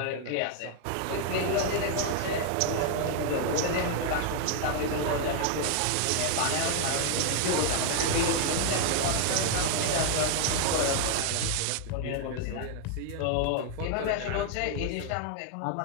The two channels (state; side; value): different; both; correlation 0.00